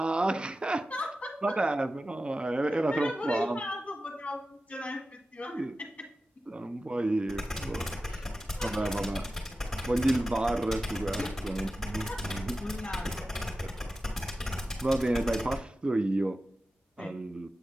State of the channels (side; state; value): both; normal; correlation 0.93